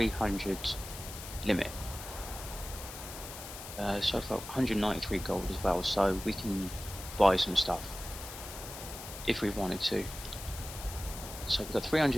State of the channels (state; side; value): noise; left; hiss, 11 dB below the sound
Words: limit. So I've got 193 gold as well, so we can buy some stuff if we wanted to. So we've got